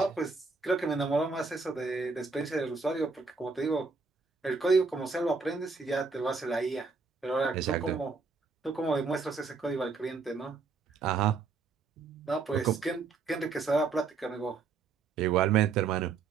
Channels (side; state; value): left; quieter; 4.5 dB